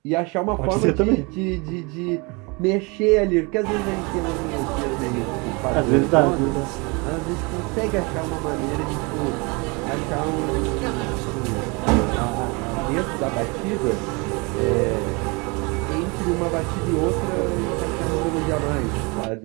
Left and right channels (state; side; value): quieter; left; 28.5 dB